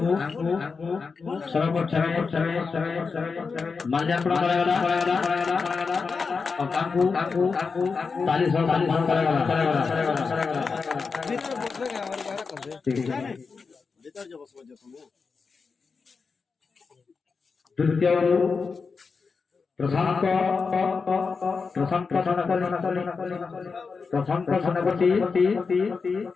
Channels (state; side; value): quieter; right; 4.9 dB